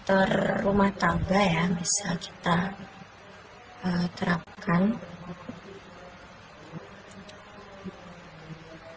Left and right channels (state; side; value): identical; both; correlation 1.00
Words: rumah tangga ya, bisa kita terapkan.